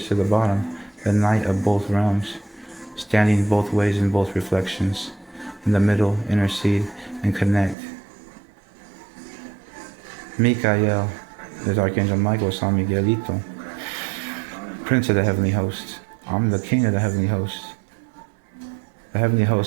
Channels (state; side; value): drops out; left; at 7.8 s